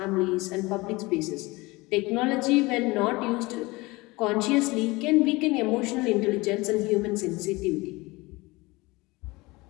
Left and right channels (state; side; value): quieter; right; 22.6 dB